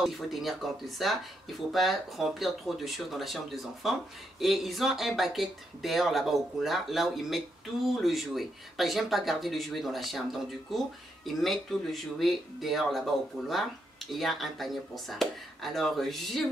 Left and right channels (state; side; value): normal; both; correlation 0.80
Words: il faut tenir compte de ça. Il ne faut pas remplir trop de choses dans la chambre des enfants. Et ils ont un bucket dehors là-bas au couloir, là où ils mettent tout le jouet. Parce que j'aime pas garder le jouet dans la chambre. Donc du coup, ils mettent tout le jouet dehors là-bas au couloir. Et il y a un panier pour ça. Alors, je